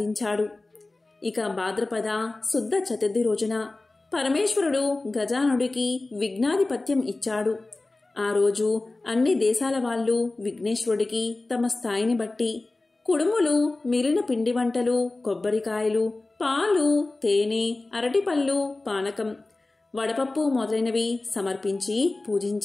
ఇక భాద్రపద శుద్ధ చతుర్థి రోజున పరమేశ్వరుడు గజానుడికి విఘ్నాధిపత్యం ఇచ్చాడు. ఆ రోజు అన్ని దేశాల వాళ్ళు విఘ్నేశ్వరుడికి తమ స్థాయిని బట్టి కుడుములు, మిగిలిన పిండి వంటలు, కొబ్బరికాయలు, పాలు, తేనె, అరటిపళ్ళు, పానకం, వడపప్పు మొదలైనవి సమర్పించి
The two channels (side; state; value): right; quieter; 3.1 dB